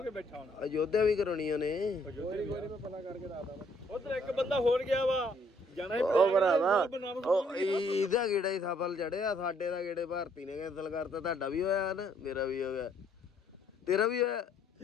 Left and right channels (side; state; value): both; normal; correlation 0.66